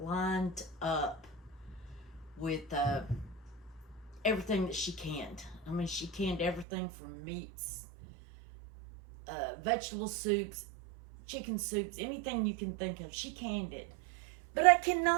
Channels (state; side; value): drops out; left; at 6.7 s